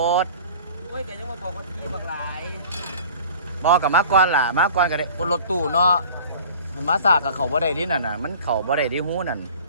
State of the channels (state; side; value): inverted; both; correlation -0.44